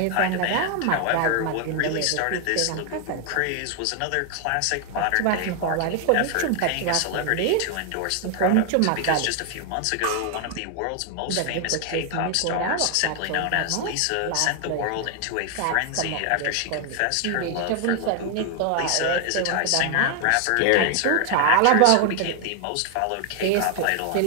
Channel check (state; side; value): different; both; correlation 0.00